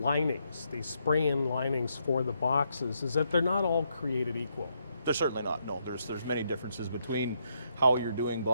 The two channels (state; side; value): inverted; both; correlation -0.78